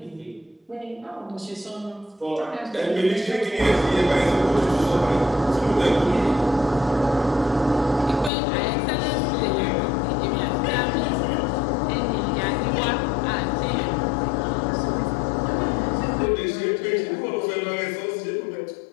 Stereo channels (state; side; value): drops out; right; at 8.3 s